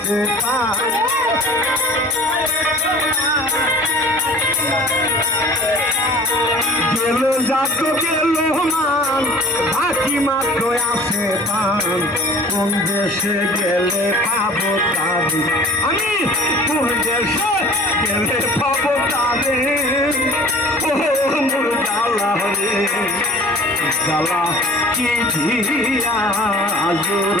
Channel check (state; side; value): normal; both; correlation 0.46